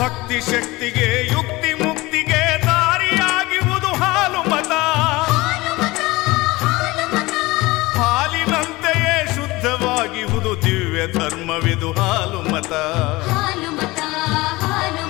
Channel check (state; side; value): quieter; right; 21.1 dB